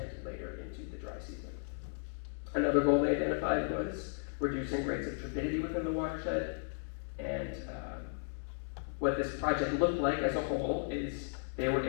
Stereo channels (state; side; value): silent; right; digital silence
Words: later into the dry season. Another goal they identified was reducing rates of turbidity within the watershed, and what this project looked like as a whole is they were